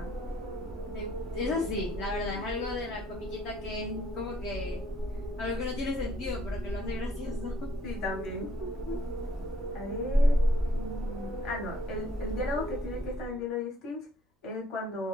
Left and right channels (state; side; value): normal; both; correlation 0.64